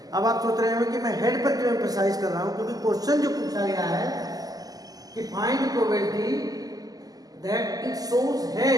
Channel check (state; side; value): late; left; 0.18 ms